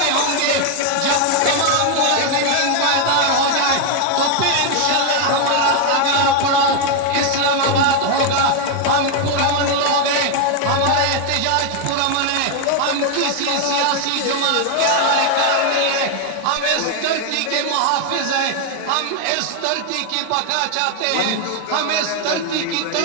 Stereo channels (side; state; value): both; different; correlation 0.01